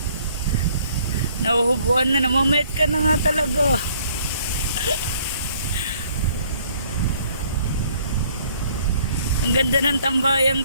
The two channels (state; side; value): inverted; both; correlation -0.60